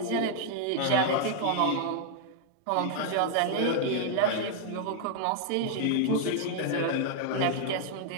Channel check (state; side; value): different; both; correlation 0.00